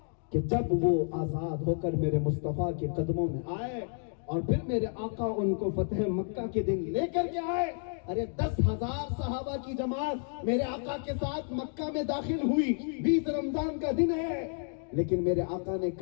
کہ جب وہ آزاد ہو کر میرے مصطفیٰ کے قدموں میں آئے اور پھر میرے آقا ان کو فتح مکہ کے دن لے کر کے آئے، ارے 10,000 صحابہ کی جماعت میرے آقا کے ساتھ مکہ میں داخل ہوئی، 20 رمضان کا دن ہے، لیکن میرے آقا نے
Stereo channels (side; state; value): right; silent; 57 dB below the other